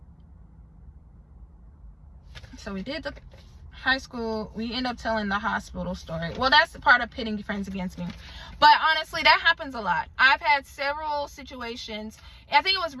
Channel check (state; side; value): identical; both; correlation 1.00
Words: So we did the high school. We end up telling the hospital story. Well, that's the part of pitting friends against me. But honestly, that happens a lot. I've had several situations. I think it was